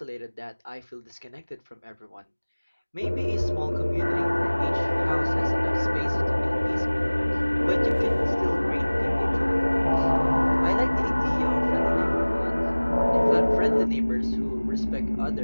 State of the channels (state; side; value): inverted; both; correlation -1.00